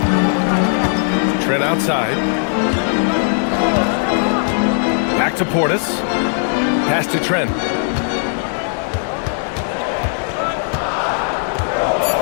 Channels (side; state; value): right; silent; 68 dB below the other